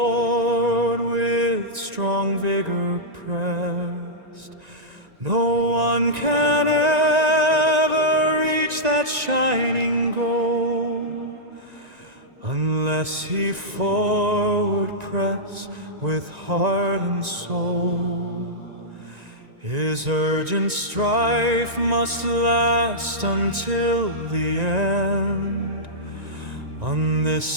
with strong vigor pressed. No one can ever reach that shining goal, unless he forward press with heart and soul. His urgent strife must last until the end. On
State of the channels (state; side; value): late; left; 1.9 ms